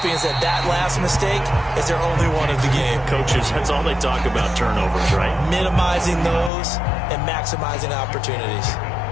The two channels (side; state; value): right; drops out; at 6.5 s